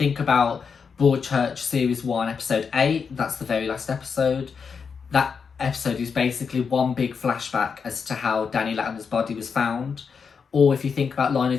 about Broadchurch Series 1, Episode 8, that's the very last episode. That episode is basically one big flashback as to how Danny Latimer's body was found. Or if you think about Line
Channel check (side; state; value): right; quieter; 5.9 dB